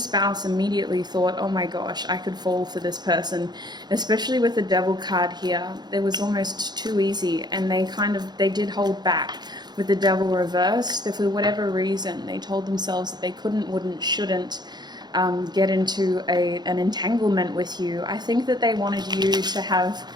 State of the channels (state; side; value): late; left; 0.20 ms